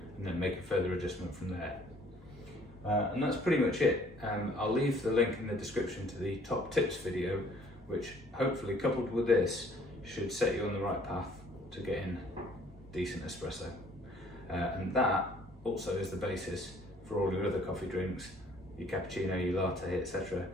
and then make a further adjustment from there. And that's pretty much it. I'll leave the link in the description to the top tips video, which hopefully, coupled with this, should set you on the right path to getting decent espresso. And that also is the basis for all your other coffee drinks, your cappuccino, your latte, etc.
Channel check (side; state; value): both; normal; correlation 0.58